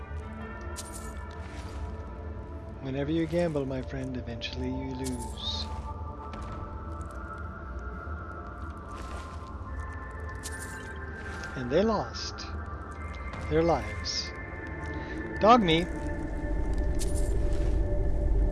Whenever you gamble, my friend, eventually you lose. And they lost their lives. Dog meat.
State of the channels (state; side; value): identical; both; correlation 1.00